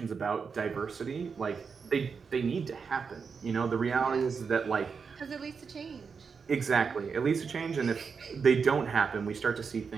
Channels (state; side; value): quieter; left; 5.6 dB